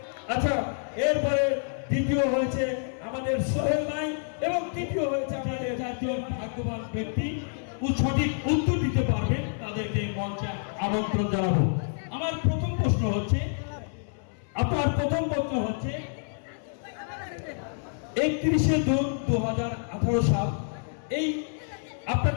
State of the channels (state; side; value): silent; right; 59 dB below the other